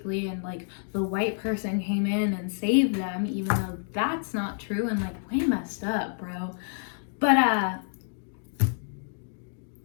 and like the white person came in and saved them, even though that's not true and like way messed up, bro. But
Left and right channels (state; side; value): silent; right; digital silence